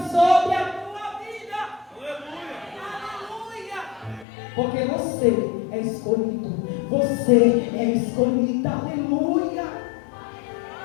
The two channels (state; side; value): drops out; right; at 4.2 s